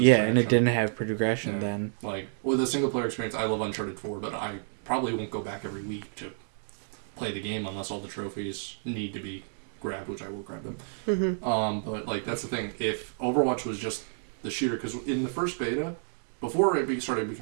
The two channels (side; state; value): left; silent; digital silence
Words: traction. and it didn't have progression Yeah. then. Like with a single player experience, I love Uncharted 4, but I probably won't go back every week to play the game unless all the trophies need to be grabbed, which I will grab them. But like that's the thing. If Overwatch was just the shooter, because in the first beta, before it started